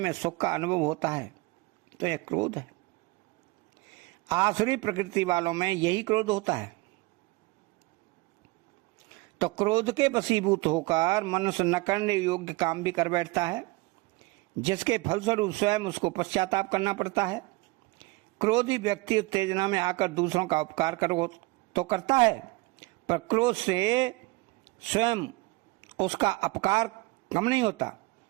सुख का अनुभव होता है तो यह क्रोध है। आसुरी प्रकृति वालों में यही क्रोध होता है। तो क्रोध के वशीभूत होकर मनुष्य न करने योग्य काम भी कर बैठता है, जिसके फलस्वरूप स्वयं उसको पश्चाताप करना पड़ता है। क्रोधी व्यक्ति उत्तेजना में आकर दूसरों का उपकार करो तो करता है, पर क्रोध से स्वयं उसका अपकार कम नहीं होता,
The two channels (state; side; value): quieter; left; 23.8 dB